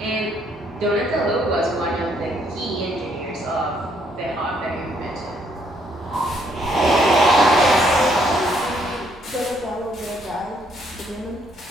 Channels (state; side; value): normal; both; correlation 0.70